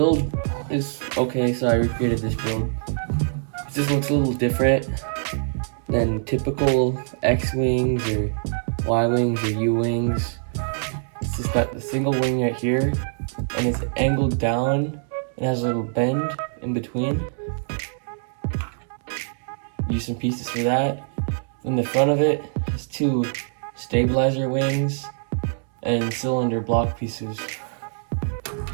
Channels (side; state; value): left; silent; 63 dB below the other